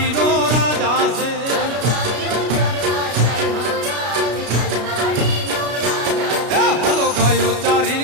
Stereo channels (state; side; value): late; left; 33 ms